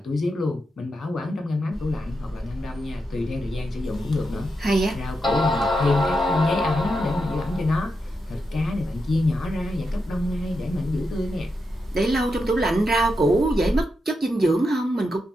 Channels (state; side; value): normal; both; correlation 0.86